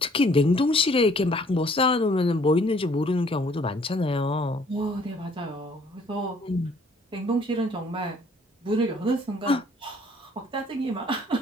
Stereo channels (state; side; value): normal; both; correlation 0.60